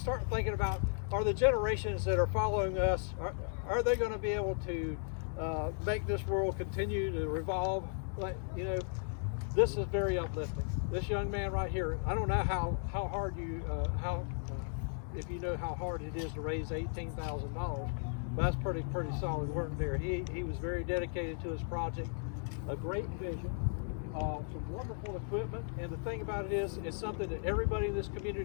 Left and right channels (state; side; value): silent; right; 54 dB below the other